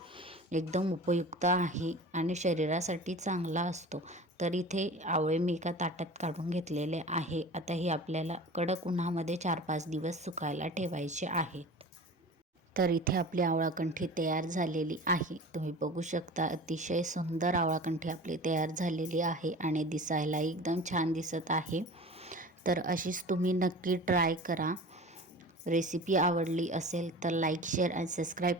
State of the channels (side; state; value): both; normal; correlation 0.37